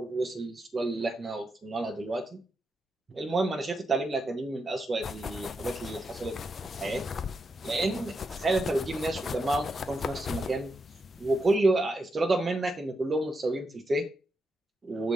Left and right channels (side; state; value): both; normal; correlation 0.84